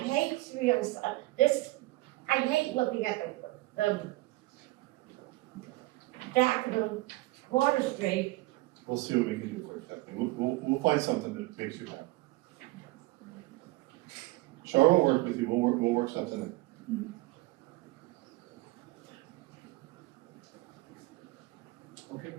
I hate looking at the Daffodil Water Street. We'll see what we can do for you, Kathleen. We'll find something that makes you happy. Char will work with you, we'll work something in. Okay.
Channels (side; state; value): left; quieter; 20.6 dB